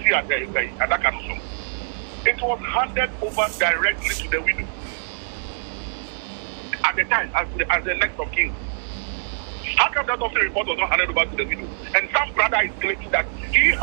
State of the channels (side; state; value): left; silent; digital silence